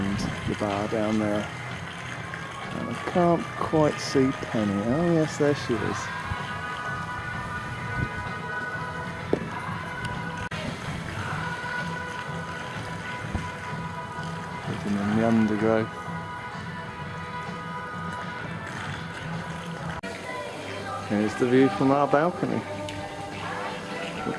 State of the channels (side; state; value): both; identical; correlation 1.00